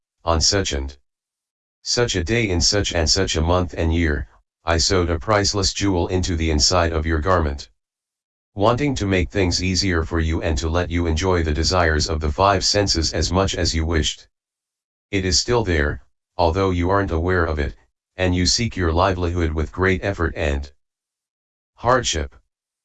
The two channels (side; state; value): both; identical; correlation 1.00